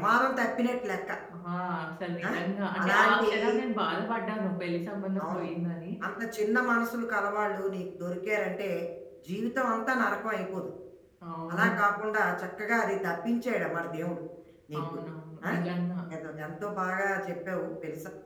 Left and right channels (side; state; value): both; identical; correlation 1.00